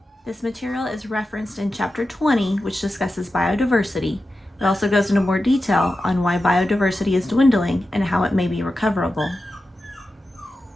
This material is referenced in Chapter 20, which discusses biodiversity. It also goes into more detail on why biodiversity is dwindling and how it may be recoverable.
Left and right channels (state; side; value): normal; both; correlation 0.92